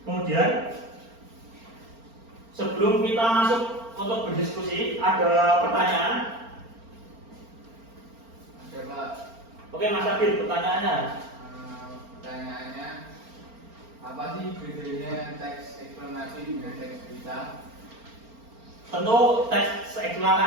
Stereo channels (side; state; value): left; late; 4.4 ms